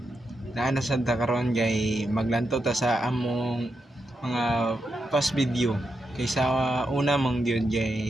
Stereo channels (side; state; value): both; normal; correlation 0.85